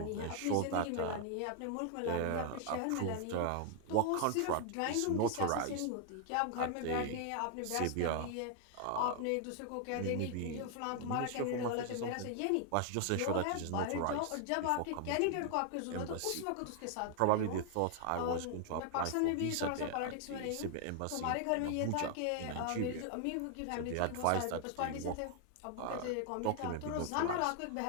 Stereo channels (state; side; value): different; both; correlation 0.00